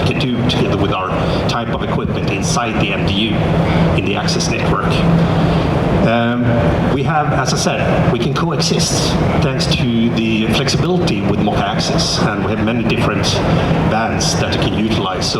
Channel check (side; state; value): both; identical; correlation 1.00